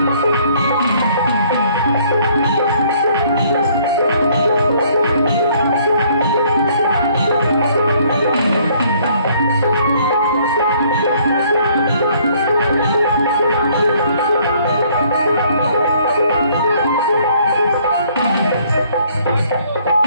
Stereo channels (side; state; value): both; inverted; correlation -0.62